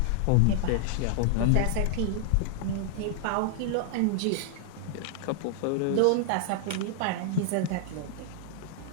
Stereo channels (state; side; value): different; both; correlation -0.01